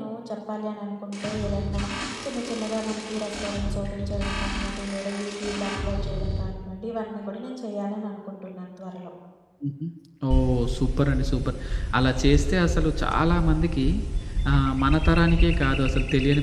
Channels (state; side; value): identical; both; correlation 1.00